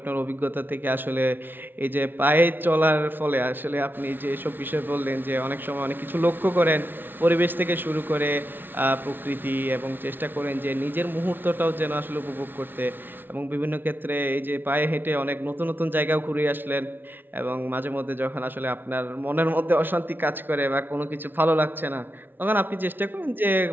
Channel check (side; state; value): left; late; 0.095 ms